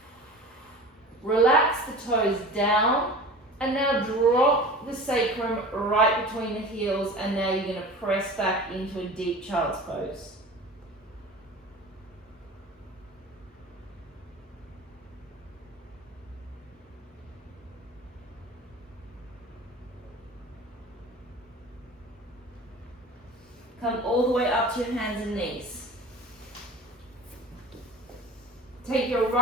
Relax the toes down. And now drop the sacrum right between the heels. And now you're going to press back into a deep child's pose. Come all the way up to your hands and knees. Take your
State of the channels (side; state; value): both; normal; correlation 0.37